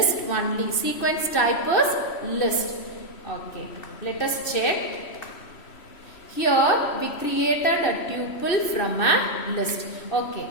only. Sequence type is list. Okay. Let us check. Here we created a tuple from a list. Okay.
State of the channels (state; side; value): late; right; 3.1 ms